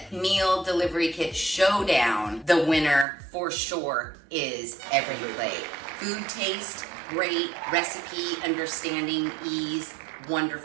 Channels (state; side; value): drops out; left; at 3.1 s